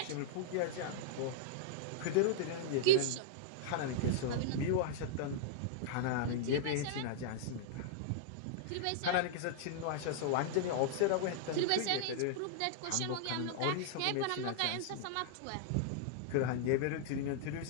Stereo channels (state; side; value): different; both; correlation -0.01